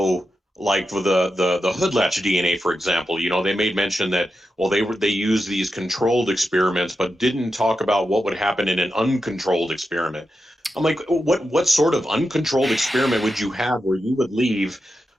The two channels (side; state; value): both; normal; correlation 0.89